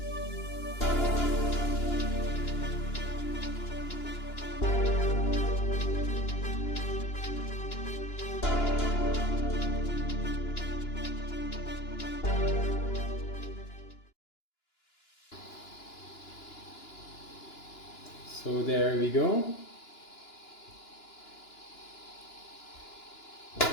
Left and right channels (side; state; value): right; late; 2.9 ms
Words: So there we go.